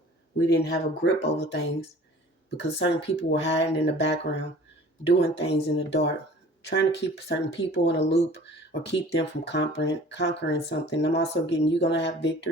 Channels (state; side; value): normal; both; correlation 0.47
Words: we didn't have a grip over things because certain people were hiding in the background, doing things in the dark, trying to keep certain people in a loop or keep them from conquering something. I'm also getting you're going to have